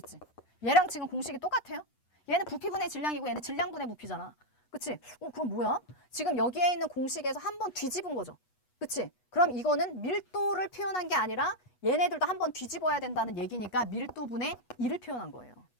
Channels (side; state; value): right; late; 8.2 ms